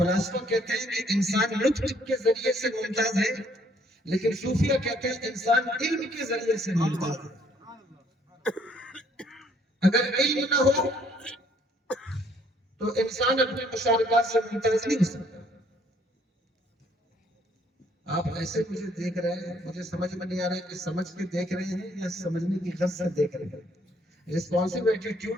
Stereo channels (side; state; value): both; normal; correlation 0.64